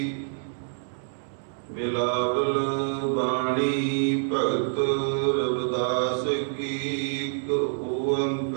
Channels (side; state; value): left; silent; digital silence